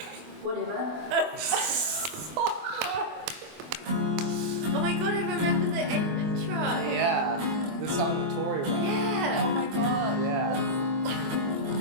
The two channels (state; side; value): late; left; 24 ms